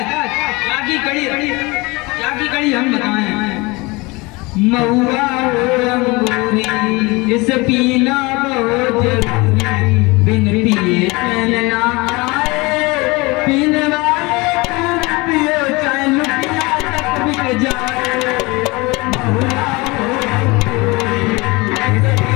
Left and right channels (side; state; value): right; quieter; 24.6 dB